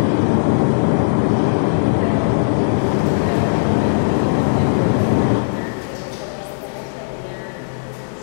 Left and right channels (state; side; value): silent; right; digital silence